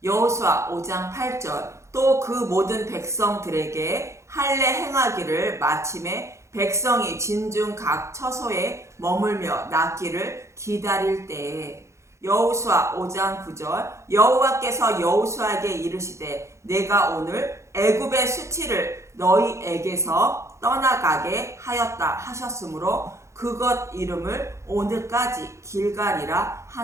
여호수아 5장 8절 또 그 모든 백성들에게 할례 행하기를 마침에 백성이 진중 각 처소에 머물며 낫기를 기다릴 때에. 여호수아 5장 9절 여호와께서 여호수아에게 이르시되 내가 오늘 애굽의 수치를 너희에게서 떠나가게 하였다 하셨으므로 그것 이름을 오늘까지 길갈이라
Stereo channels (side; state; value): left; late; 0.14 ms